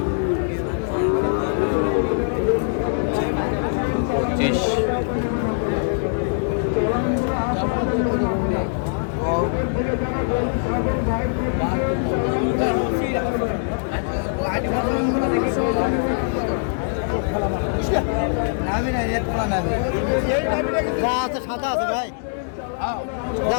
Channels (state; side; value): silent; right; digital silence